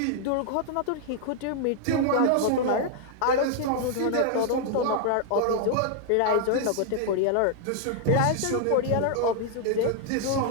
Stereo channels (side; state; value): both; different; correlation 0.00